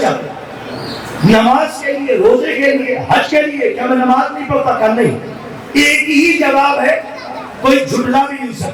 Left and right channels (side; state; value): both; identical; correlation 1.00